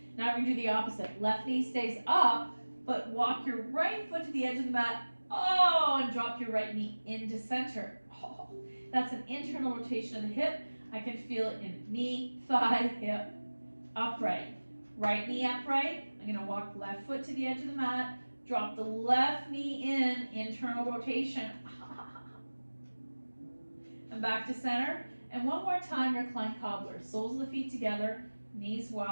Now we're going to do the opposite. Left knee stays up, but walk your right foot to the edge of the mat. Oh, and drop your right knee into center. Oh, that's an internal rotation of the hip. I can feel it in knee, thigh, hip, upright. Right knee upright. I'm going to walk left foot to the edge of the mat. Drop the left knee in, internal rotation. And back to center. And one more time, recline cobbler. Soles of the feet together, knees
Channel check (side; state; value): both; inverted; correlation -1.00